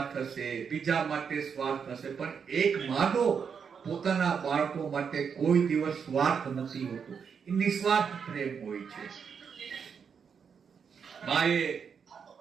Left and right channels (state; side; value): quieter; left; 6.6 dB